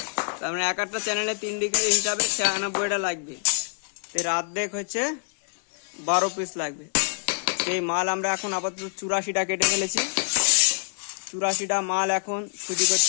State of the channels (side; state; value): right; silent; digital silence